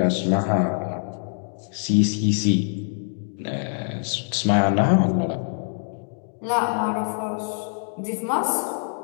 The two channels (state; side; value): silent; right; digital silence